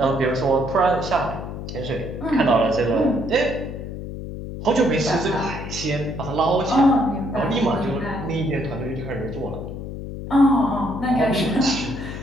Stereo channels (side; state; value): left; noise; hum, 8 dB below the sound